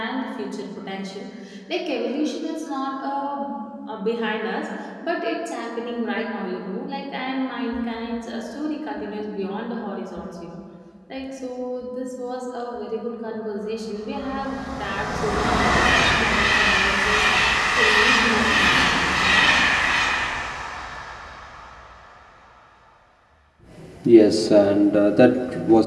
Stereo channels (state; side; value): identical; both; correlation 1.00